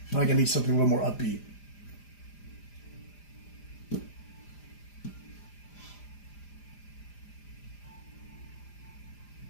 I feel like I need something a little more upbeat.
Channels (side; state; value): right; late; 4.9 ms